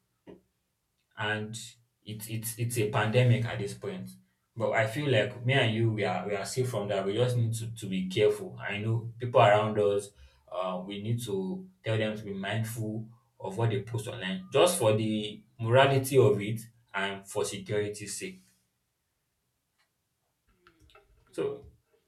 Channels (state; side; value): identical; both; correlation 1.00